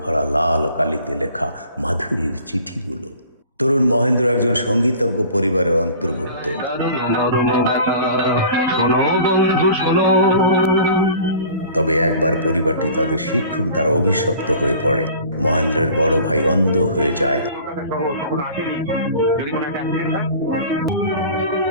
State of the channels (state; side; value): inverted; both; correlation -0.45